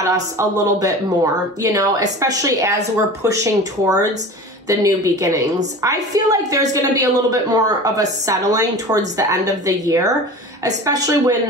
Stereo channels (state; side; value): normal; both; correlation 0.36